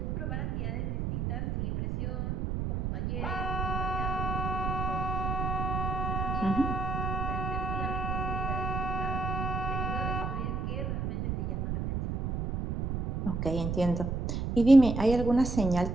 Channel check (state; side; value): noise; right; rumble, 1 dB below the sound